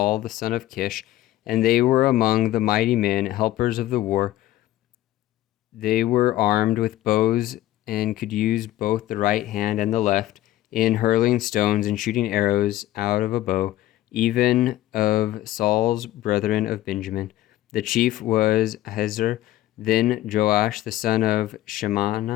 the son of Kish, and they were among the mighty men, helpers of the war. They were armed with bows and could use both the right hand and the left in hurling stones and shooting arrows out of a bow, even of Saul's brethren of Benjamin. The chief was Ahiezer, then Joash the son of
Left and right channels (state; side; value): quieter; right; 14.9 dB